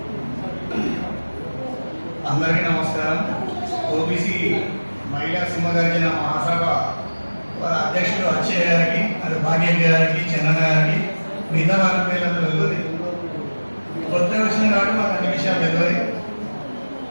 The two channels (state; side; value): inverted; both; correlation -1.00